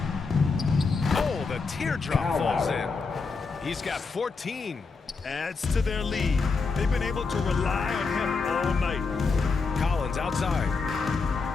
Oh, the teardrop falls in. He's got 14. Adds to their lead. They've been able to rely on him all night. Collins outside.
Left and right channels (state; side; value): quieter; right; 4.5 dB